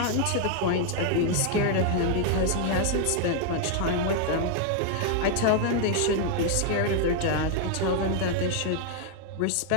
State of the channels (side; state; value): both; different; correlation 0.00